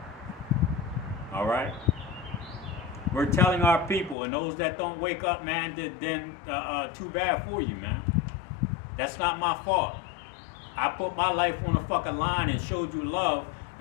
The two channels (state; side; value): drops out; right; at 4.2 s